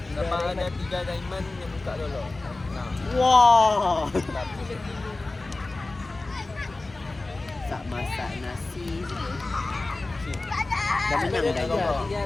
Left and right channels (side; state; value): right; quieter; 3.2 dB